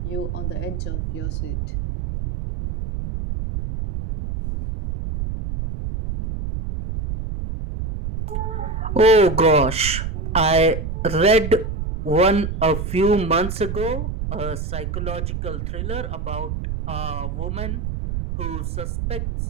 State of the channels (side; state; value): right; noise; rumble, 4 dB below the sound